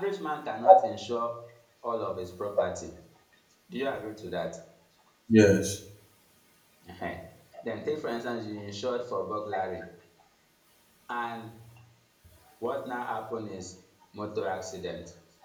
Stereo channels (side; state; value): both; identical; correlation 1.00